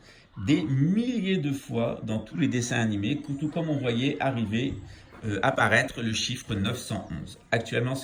des milliers de fois dans tous les dessins animés, tout comme on voyait apparaître le chiffre 911. Actuellement,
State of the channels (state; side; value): identical; both; correlation 1.00